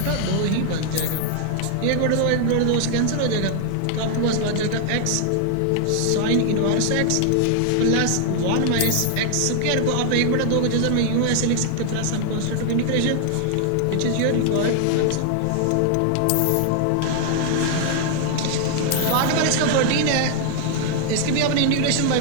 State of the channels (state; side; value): different; both; correlation 0.00